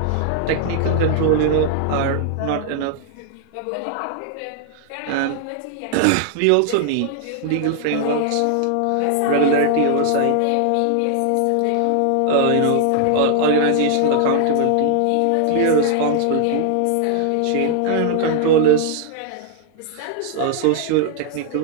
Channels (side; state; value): both; different; correlation 0.00